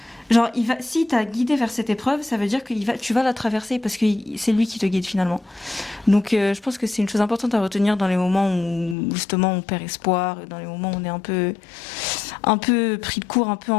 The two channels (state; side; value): drops out; right; at 9.0 s